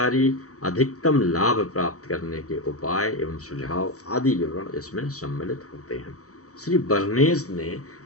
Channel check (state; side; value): late; right; 0.65 ms